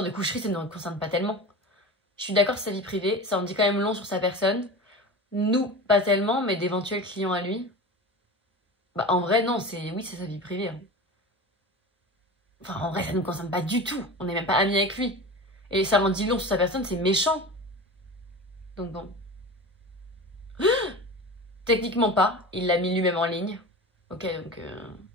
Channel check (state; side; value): normal; both; correlation 0.31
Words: de coucherie, ça ne nous concerne pas tellement. Je suis d'accord, c'est sa vie privée, ça en dit quand même long sur sa personne. Nous, pas tellement, mais d'éventuels clients à lui. Bah en vrai, non, oui, c'est sa vie privée. Hein. Enfin, en vrai, ça ne nous concerne pas du tout. On n'est même pas amis avec lui. Et ça en dit long sur sa personne, c'est méchant. Donc bon. Techniquement pas, il l'a mis lui-même en ligne. Ok,